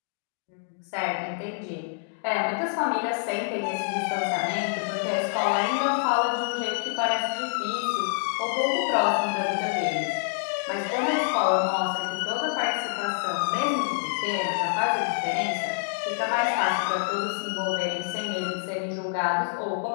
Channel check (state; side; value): silent; right; digital silence